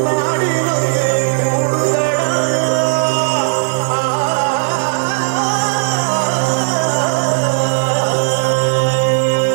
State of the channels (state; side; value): silent; left; digital silence